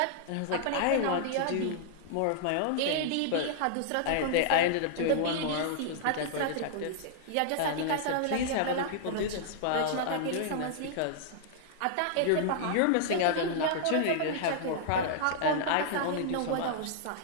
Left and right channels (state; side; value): different; both; correlation -0.01